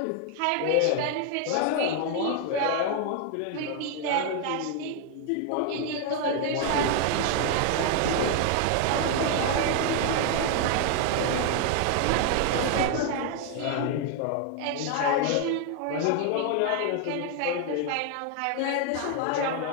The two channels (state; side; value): different; both; correlation 0.00